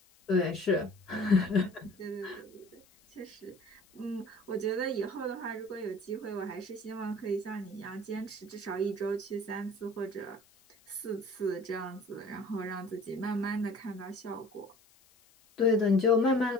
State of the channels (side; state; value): left; noise; hiss, 29 dB below the sound